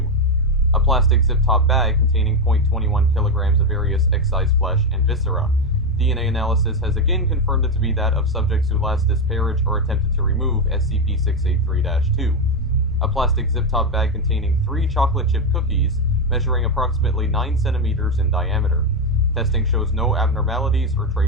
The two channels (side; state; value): both; normal; correlation 0.08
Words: A plastic zip-top bag containing 0.21 kilograms of various excised flesh and viscera. DNA analysis has again confirmed it to be that of subjects who last disparaged or attempted to remove SCP-683-2. A plastic zip-top bag containing 3 chocolate chip cookies, measuring approximately 9 centimeters in diameter. Testing shows no abnormalities or